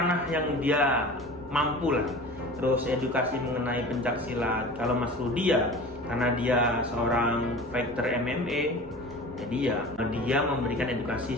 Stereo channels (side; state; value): both; normal; correlation 0.37